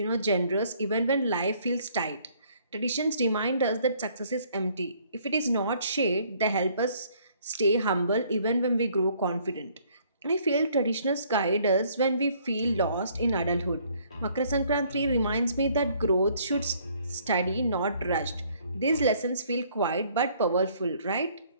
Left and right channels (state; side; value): inverted; both; correlation -0.62